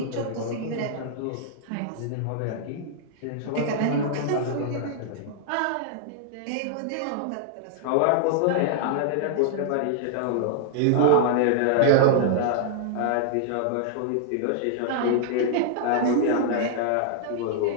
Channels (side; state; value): both; different; correlation -0.01